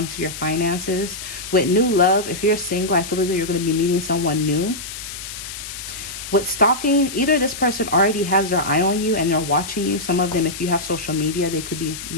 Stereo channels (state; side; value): noise; left; hiss, 10 dB below the sound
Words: to your finances. With new love, if you're single, I feel as though you're going to be meeting someone new. With stalking, either this person already has their eye on you and they're watching you. Some of them, if you have social media, they could be,